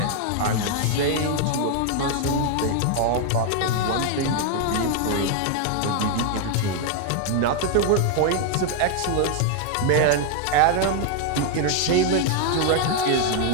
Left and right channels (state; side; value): different; both; correlation 0.00